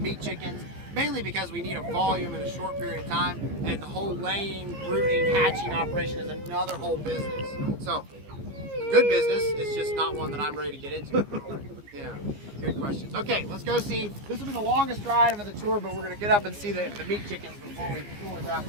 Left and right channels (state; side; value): late; left; 15 ms